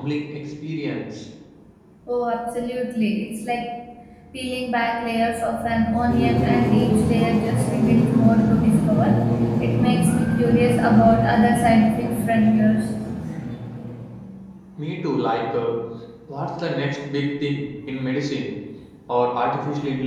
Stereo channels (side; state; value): both; identical; correlation 1.00